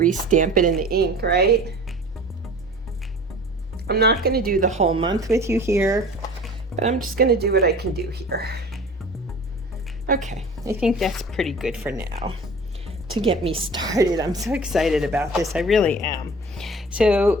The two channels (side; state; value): both; normal; correlation 0.42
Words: it in the ink, right? I'm not going to do the whole month with you here, but I'm just going to do what I can do here. Okay, I think that's pretty good for now to get me started. I'm so excited about this. I really am.